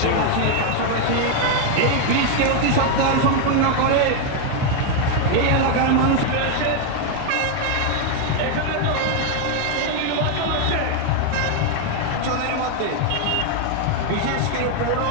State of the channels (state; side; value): different; both; correlation 0.01